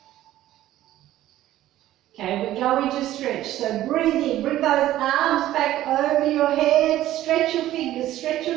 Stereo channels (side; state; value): left; quieter; 14.0 dB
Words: Okay, we're going to stretch. So breathe in, bring those arms back over your head, stretch your fingers, stretch